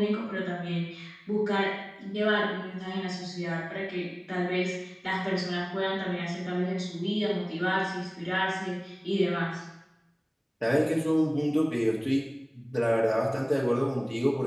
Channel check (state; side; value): identical; both; correlation 1.00